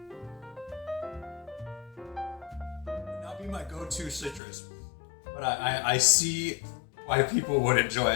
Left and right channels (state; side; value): drops out; right; at 4.4 s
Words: Not be my go-to citrus, but I see why people would enjoy